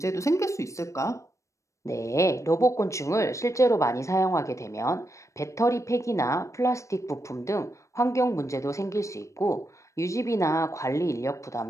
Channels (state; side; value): late; right; 0.15 ms